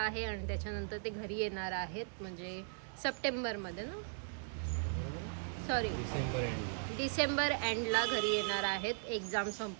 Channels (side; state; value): left; silent; digital silence